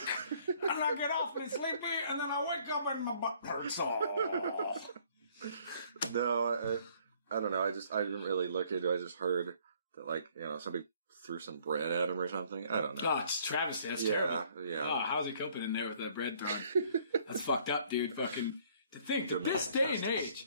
and I get awfully sleepy, and then I wake up and my butt hurts. No, I don't know. I didn't really look into it. I just heard that like somebody threw some bread at him or something. I don't know. Oh, it's travesty. That's terrible. Yeah. Oh, how's he coping in there with that bread thrown? That's fucked up, dude. Fucking to think that this day and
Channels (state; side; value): inverted; both; correlation -0.61